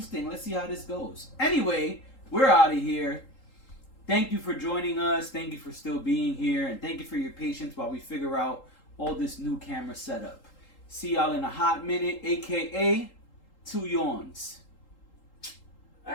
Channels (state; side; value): late; right; 3.8 ms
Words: Let's see how this goes. Anyway, we're out of here. Thank you for joining us. Thank you for still being here. And thank you for your patience while we figure out all this new camera setup. See y'all in a hot minute, a.k.a. 2 yawns. I